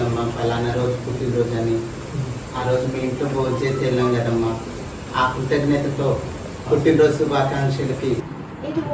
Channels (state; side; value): identical; both; correlation 1.00